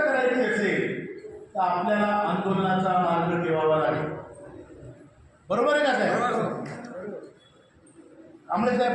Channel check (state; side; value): identical; both; correlation 1.00